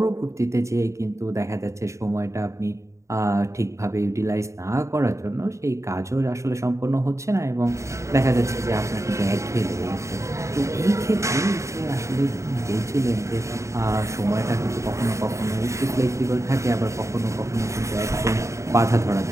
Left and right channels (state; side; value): late; left; 0.14 ms